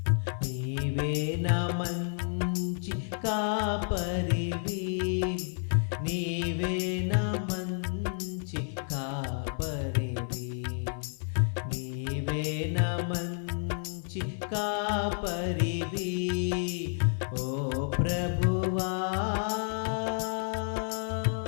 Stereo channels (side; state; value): right; silent; 57 dB below the other